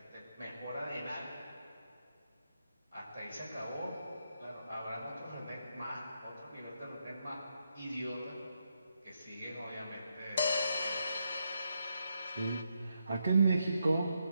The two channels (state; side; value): inverted; both; correlation -0.81